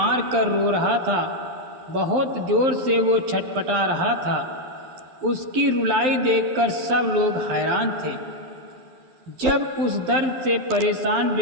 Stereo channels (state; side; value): late; left; 11 ms